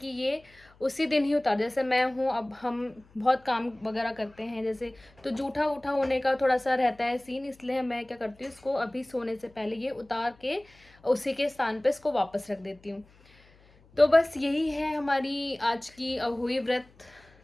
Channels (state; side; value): noise; left; hum, 28 dB below the sound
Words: ये उसी दिन ही उतार, जैसे मैं हूँ, अब हम बहुत काम वगैरह करते हैं जैसे, तो जूठा उठा होने का थोड़ा सा रहता है सीन, इसलिए मैं क्या करती हूँ, इसको अभी सोने से पहले ये उतार के उसी के स्थान पे इसको वापस रख देती हूँ। तो बस यही है हमारी आज की अहोई व्रत,